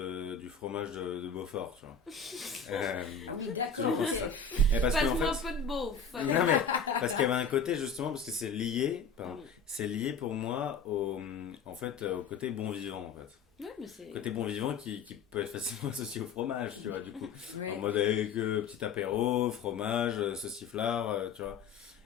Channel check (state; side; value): quieter; right; 5.1 dB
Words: du fromage de Beaufort, tu vois. Ah oui, d'accord. Passe-moi un peu de beauf. Non, mais parce qu'il y avait un côté, justement, parce que c'est lié, c'est lié pour moi en fait, au côté bon vivant, en fait. Ouais, mais c'est... Côté bon vivant qui peut être facilement associé au fromage, tu vois, du coup. Ouais. En mode avec petit apéro, fromage, sauciflard, tu vois.